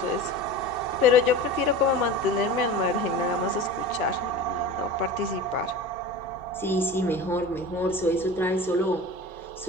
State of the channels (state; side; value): normal; both; correlation 0.33